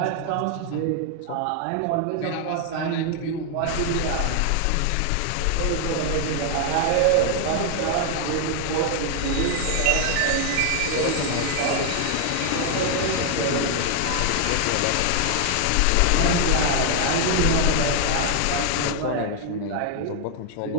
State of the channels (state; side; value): different; both; correlation 0.00